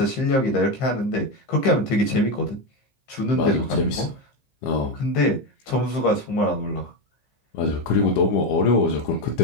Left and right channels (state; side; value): late; right; 15 ms